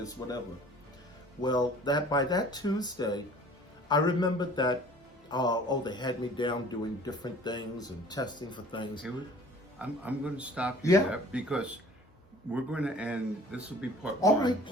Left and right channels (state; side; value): normal; both; correlation 0.49